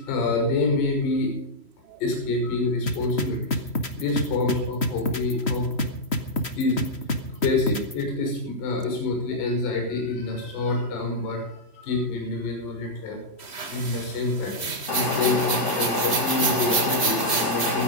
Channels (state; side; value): late; right; 3.1 ms